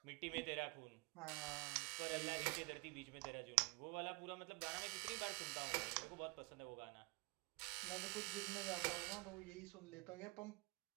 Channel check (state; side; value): quieter; left; 27.0 dB